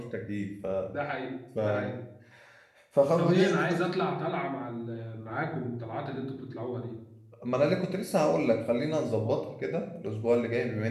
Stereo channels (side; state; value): both; identical; correlation 1.00